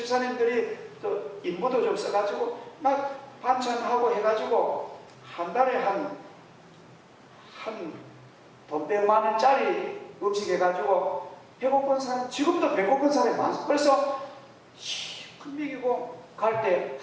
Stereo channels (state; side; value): identical; both; correlation 1.00